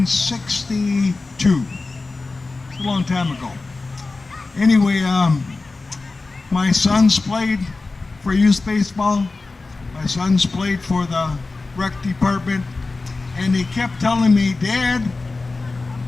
It's a long time ago. Anyway, my sons played for youth baseball. My sons played for the rec department, and he kept telling me, Dad,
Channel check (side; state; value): right; quieter; 3.6 dB